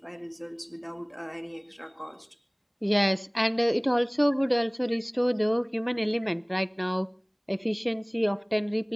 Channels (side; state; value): both; identical; correlation 1.00